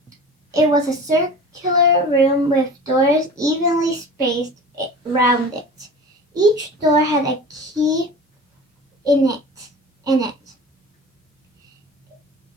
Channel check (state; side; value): normal; both; correlation 0.37